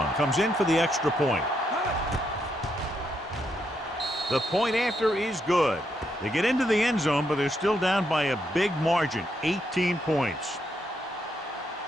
comes in for the extra point. The point after is good. They get into the end zone, but they're still down by a big margin, 18 points.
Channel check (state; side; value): normal; both; correlation 0.78